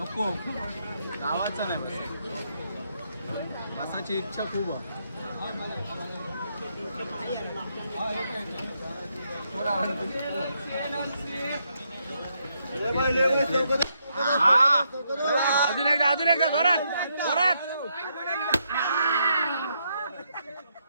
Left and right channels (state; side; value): inverted; both; correlation -0.78